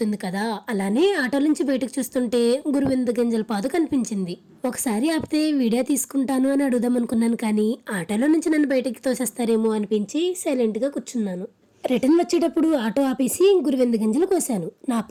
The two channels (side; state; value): both; identical; correlation 1.00